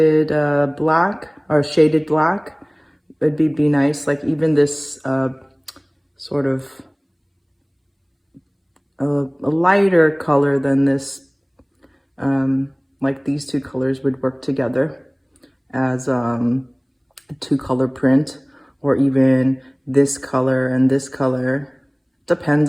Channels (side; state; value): both; identical; correlation 1.00